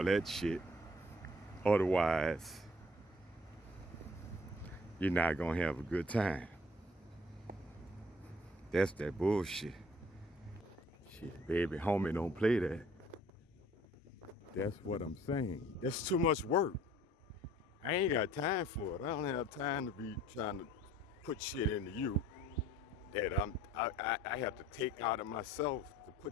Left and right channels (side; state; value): both; normal; correlation 0.55